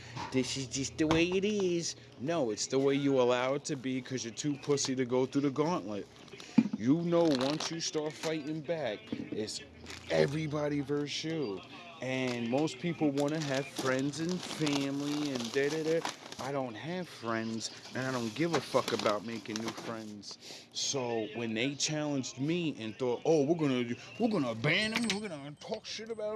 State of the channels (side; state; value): both; identical; correlation 1.00